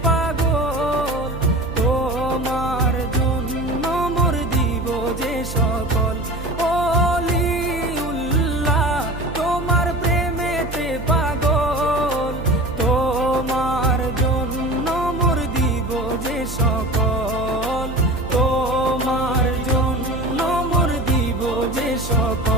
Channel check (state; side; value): noise; right; hum, 10 dB below the sound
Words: পাগল, তোমার জন্য মোর দিব যে সকল।